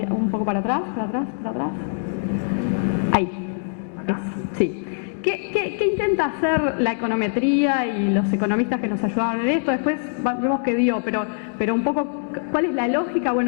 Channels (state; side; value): silent; right; digital silence